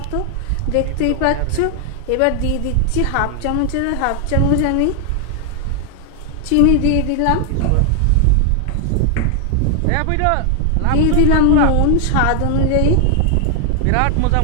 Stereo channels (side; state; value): both; different; correlation 0.00